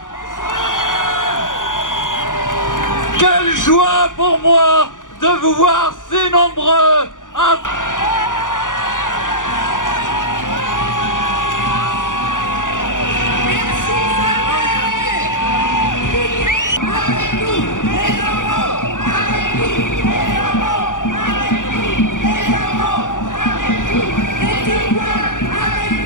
Quelle joie pour moi de vous voir si nombreux.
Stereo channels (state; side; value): late; right; 0.87 ms